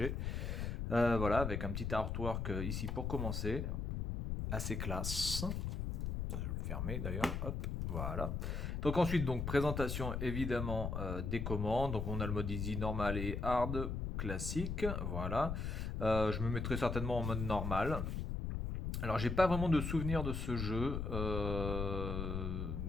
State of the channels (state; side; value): noise; left; rumble, 2 dB below the sound